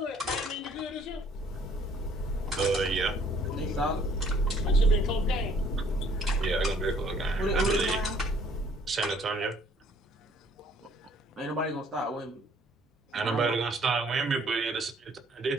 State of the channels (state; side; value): normal; both; correlation 0.60